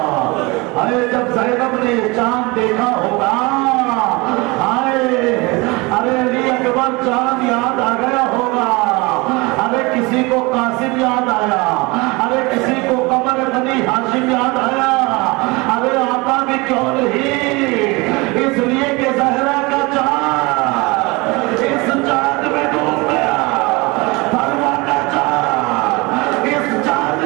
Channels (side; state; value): left; quieter; 25.1 dB